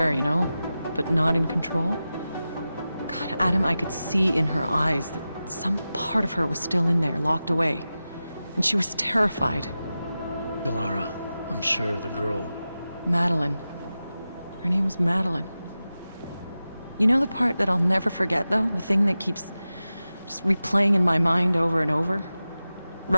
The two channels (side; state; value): both; inverted; correlation -0.94